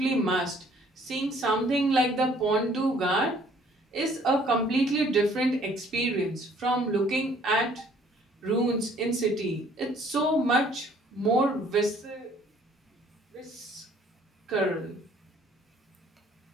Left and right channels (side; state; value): both; normal; correlation 0.59